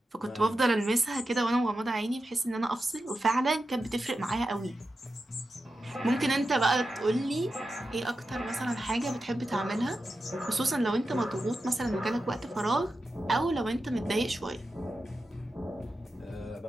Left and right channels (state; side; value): normal; both; correlation 0.91